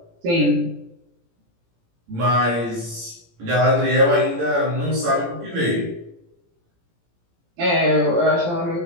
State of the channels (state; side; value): late; left; 17 ms